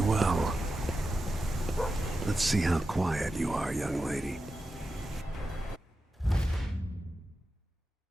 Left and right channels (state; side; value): normal; both; correlation 0.91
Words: well. Let's see how quiet you are, young lady.